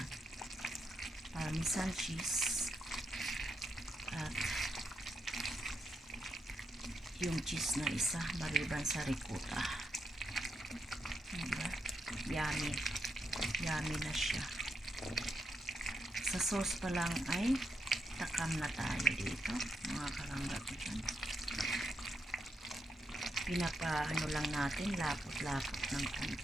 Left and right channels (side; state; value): both; normal; correlation 0.82